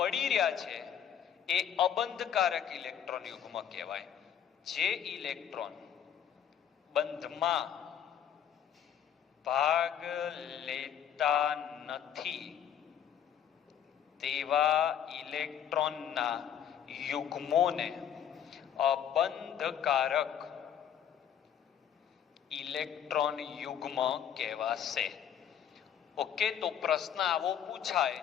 રહ્યા છે એ અબંધકારક ઇલેક્ટ્રોન યુગ્મ કહેવાય. જે ઇલેક્ટ્રોન બંધમાં ભાગ લેતા નથી તેવા ઇલેક્ટ્રોનના યુગ્મોને અબંધકારક ઇલેક્ટ્રોન યુગ્મ કહેવાશે. ઓકે, તો પ્રશ્ન આવો પૂછાય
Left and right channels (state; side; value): quieter; right; 9.2 dB